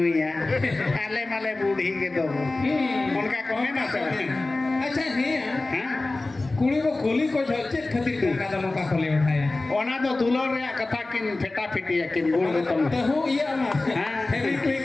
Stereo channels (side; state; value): right; quieter; 3.1 dB